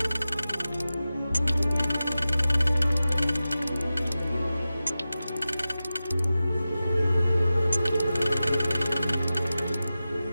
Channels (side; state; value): both; inverted; correlation -0.95